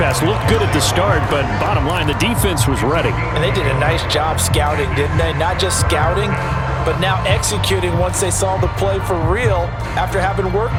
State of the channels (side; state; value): both; identical; correlation 1.00